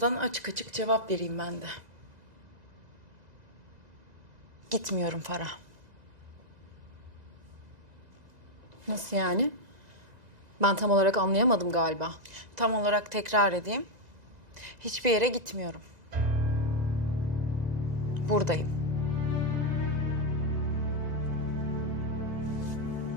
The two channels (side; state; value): left; late; 2.0 ms